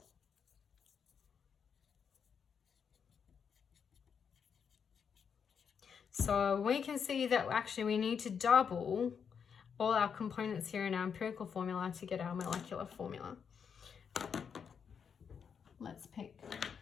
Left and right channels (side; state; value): right; quieter; 6.9 dB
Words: So we can see that actually we need to double all our components here in our empirical formula to get our molecular formula. Let's